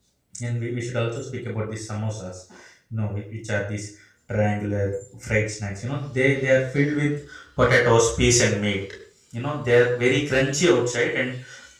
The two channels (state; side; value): identical; both; correlation 1.00